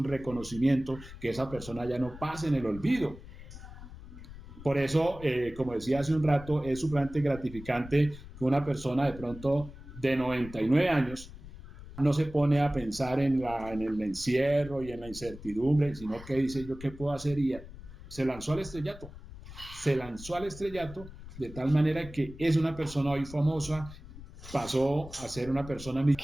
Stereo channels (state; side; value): noise; left; rumble, 15 dB below the sound